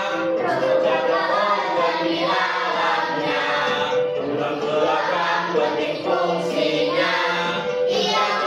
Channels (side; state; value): both; identical; correlation 1.00